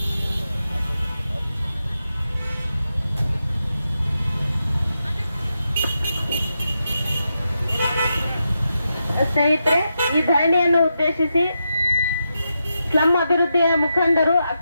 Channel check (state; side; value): inverted; both; correlation -0.86